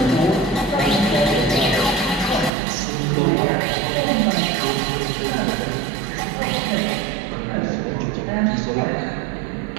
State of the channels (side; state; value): left; drops out; at 2.5 s